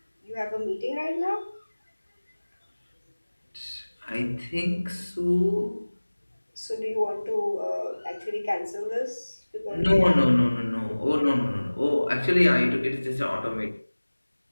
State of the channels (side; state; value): both; inverted; correlation -1.00